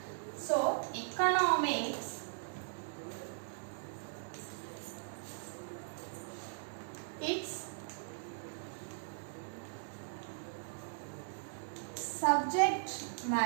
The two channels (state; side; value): silent; left; digital silence